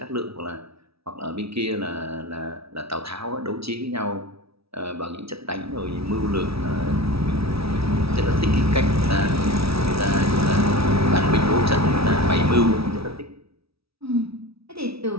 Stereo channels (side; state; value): left; late; 0.76 ms